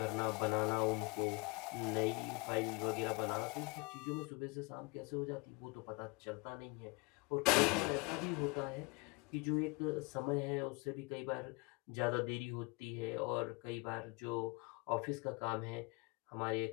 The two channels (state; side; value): quieter; right; 28.7 dB